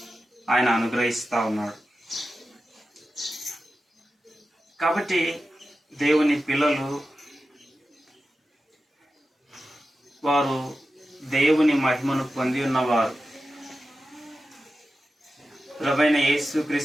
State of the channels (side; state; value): both; normal; correlation 0.92